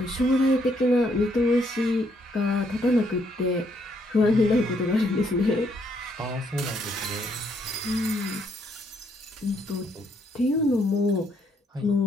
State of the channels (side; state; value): both; normal; correlation 0.72